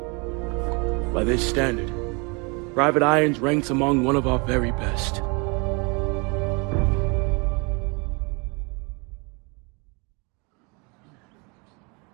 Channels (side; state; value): left; quieter; 30.7 dB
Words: By this standard, Private Irons ranks among one of our very best.